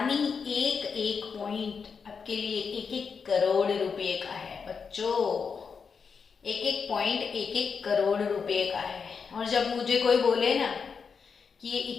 एक एक पॉइंट आपके लिए एक एक करोड़ रुपए का है बच्चों। एक एक पॉइंट एक एक करोड़ रुपए का है। और जब मुझे कोई बोले ना कि ये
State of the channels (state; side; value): quieter; right; 5.8 dB